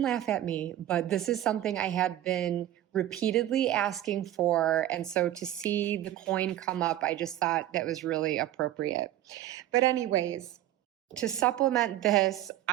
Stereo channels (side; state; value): left; quieter; 13.2 dB